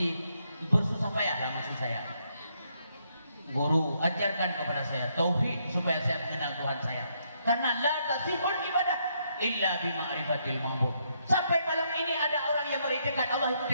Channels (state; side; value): inverted; both; correlation -0.75